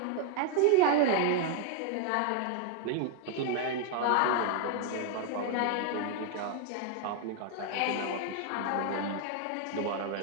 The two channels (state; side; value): different; both; correlation 0.00